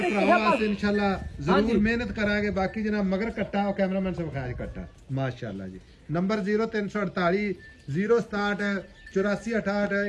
ਭਰਾਵਾਂ ਵਾਸਤੇ ਇਨਸ਼ਾਅੱਲਾ ਜ਼ਰੂਰ ਮਿਹਨਤ ਕਰਾਂਗੇ ਬਾਕੀ ਜਨਾਬ ਮਗਰ ਕੱਟਾ ਉਹ ਕੈਮਰਾਮੈਨ ਸੇ ਵਿਖਾਇਆ ਕੱਟਾ ਮਾਸ਼ਾਅੱਲਾ ਜੀ ਨੰਬਰ 0348 067 8468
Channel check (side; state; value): both; identical; correlation 1.00